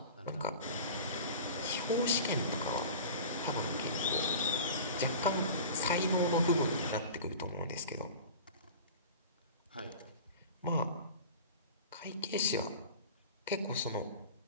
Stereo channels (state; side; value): inverted; both; correlation -0.37